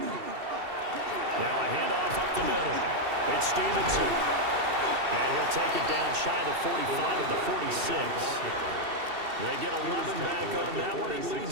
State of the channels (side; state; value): left; late; 2.7 ms